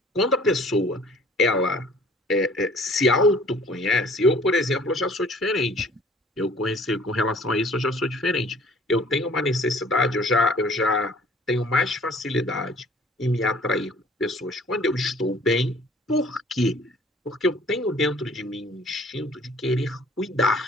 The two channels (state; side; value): normal; both; correlation 0.53